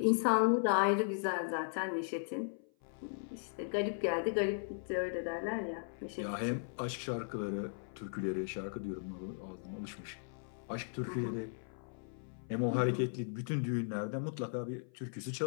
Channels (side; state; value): right; silent; 53 dB below the other